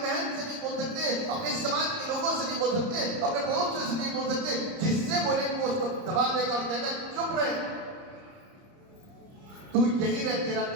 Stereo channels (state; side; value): late; left; 30 ms